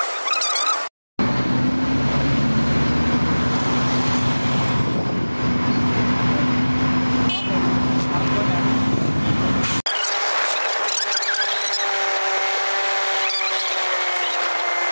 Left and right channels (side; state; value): both; inverted; correlation -1.00